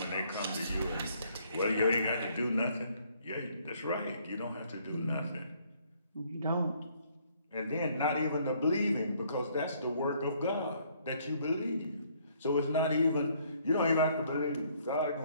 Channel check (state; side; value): inverted; both; correlation -0.65